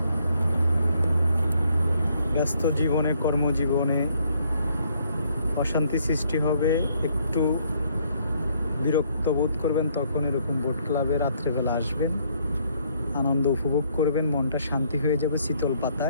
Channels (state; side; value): inverted; both; correlation -0.68